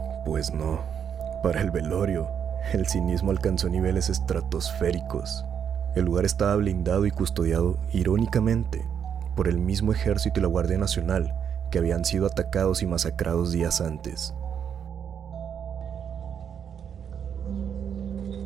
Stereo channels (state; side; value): quieter; left; 8.0 dB